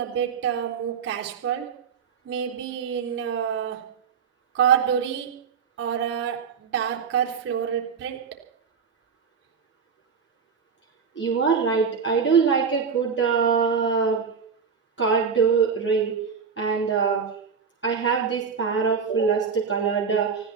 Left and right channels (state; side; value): quieter; left; 6.2 dB